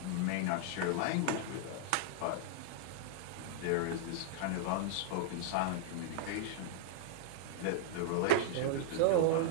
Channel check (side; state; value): both; different; correlation -0.01